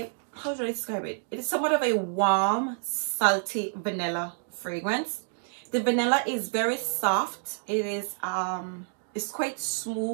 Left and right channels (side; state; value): left; silent; digital silence